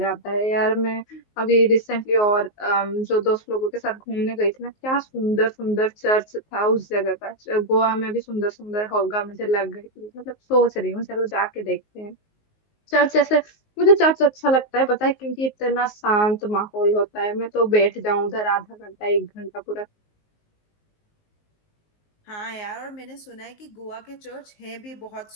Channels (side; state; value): right; late; 19 ms